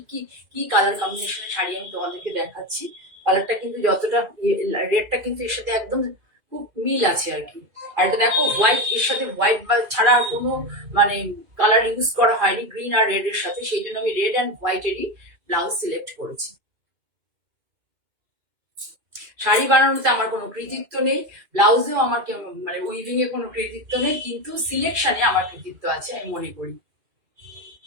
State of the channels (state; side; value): late; left; 2.5 ms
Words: কি কি কালার কম্বিনেশনের শাড়ি আমি তোমাদেরকে দেখাচ্ছি। কালারটা কিন্তু যতটা রেডটা কিন্তু এর সাথে একদম খুব মিল আছে আর কি। আর এটা দেখো হোয়াইট, এর সাথে হোয়াইট বা ছাড়া আর কোনো মানে কালার ইউজ করা হয়নি গ্রিন আর রেড এর সাথে, সেই জন্য আমি রেড অ্যান্ড হোয়াইটেরই ব্লাউজ সিলেক্ট করেছি। শাড়ি বানানোতে আমার কোনো কৃতিত্ব নেই, ব্লাউজেও আমার মানে উইভিং এ কোনো কৃতিত্ব নেই, কিন্তু সিলেকশনে আমার কৃতিত্ব আছে আমি মনে করি।